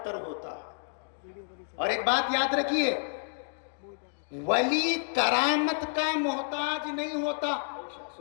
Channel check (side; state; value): right; silent; digital silence